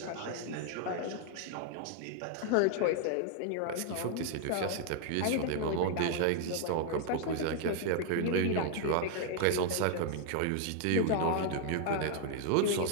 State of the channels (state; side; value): different; both; correlation 0.00